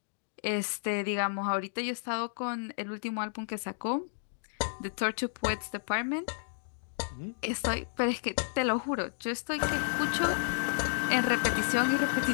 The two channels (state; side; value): silent; right; digital silence